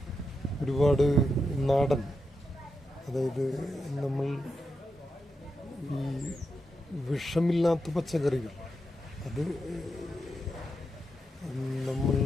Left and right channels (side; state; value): both; normal; correlation 0.86